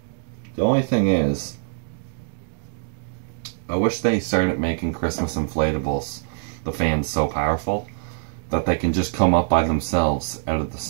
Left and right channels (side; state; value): left; silent; digital silence